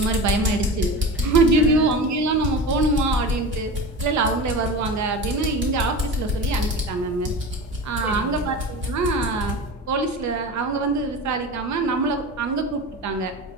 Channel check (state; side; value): normal; both; correlation 0.30